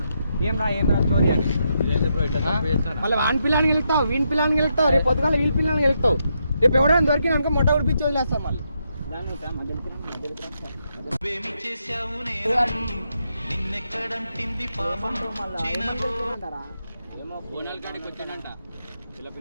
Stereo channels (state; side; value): inverted; both; correlation -0.81